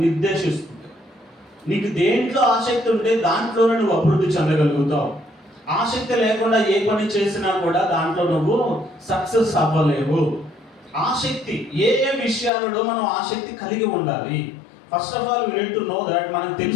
నిర్దేశిస్తుంది. నీకు దేంట్లో ఆసక్తి ఉంటే దాంట్లోనే నువ్వు అభివృద్ధి చెందగలుగుతావు. ఆసక్తి లేకుండా ఏ పని చేసినా కూడా దాంట్లో నువ్వు సక్సెస్ అవ్వలేవు. ఆసక్తి ఏ ఏ విషయాలలో మనం ఆసక్తి కలిగి ఉండాలి? First of all we need to know that. మనం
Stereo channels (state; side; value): drops out; right; at 12.5 s